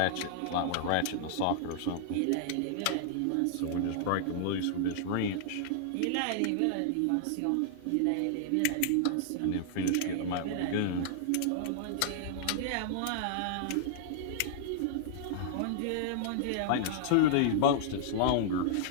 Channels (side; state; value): both; different; correlation -0.01